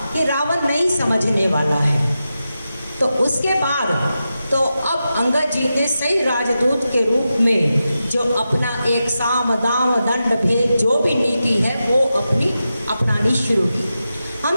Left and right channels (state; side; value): inverted; both; correlation -0.91